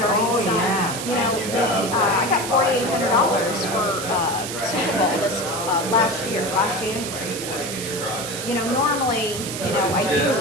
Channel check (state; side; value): noise; right; hiss, 6 dB below the sound